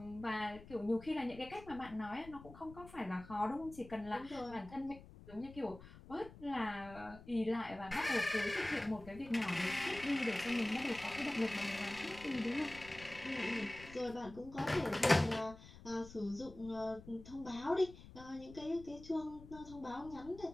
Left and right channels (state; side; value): noise; left; rumble, 17 dB below the sound